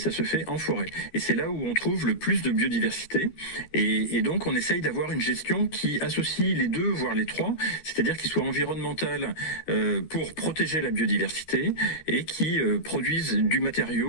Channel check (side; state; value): right; late; 13 ms